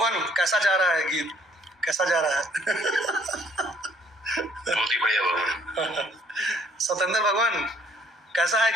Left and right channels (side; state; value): both; normal; correlation 0.63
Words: कैसा जा रहा है गीत? कैसा जा रहा है? बहुत ही बढ़िया भगवान। सतेंद्र भगवान कैसा है